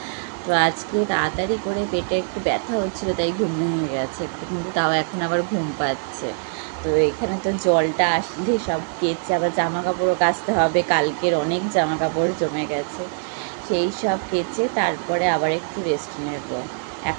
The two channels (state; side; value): silent; left; digital silence